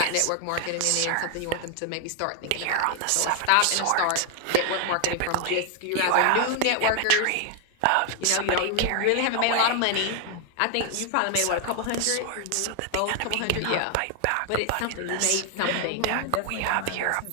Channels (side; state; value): both; different; correlation 0.00